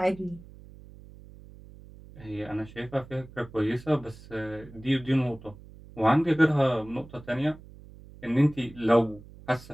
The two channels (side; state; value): right; noise; hum, 19 dB below the sound